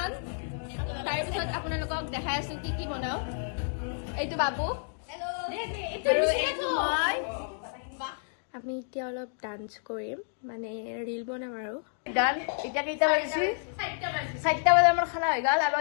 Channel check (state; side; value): silent; right; digital silence